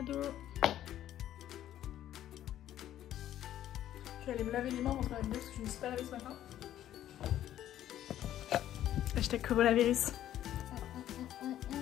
Je vais aller me laver les mains avant de faire la vidéo parce que je ne me suis pas lavée ce matin. Hashtag coronavirus.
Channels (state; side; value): quieter; right; 12.1 dB